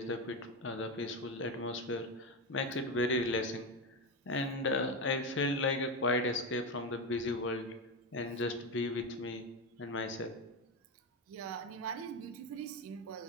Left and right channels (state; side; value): normal; both; correlation 0.14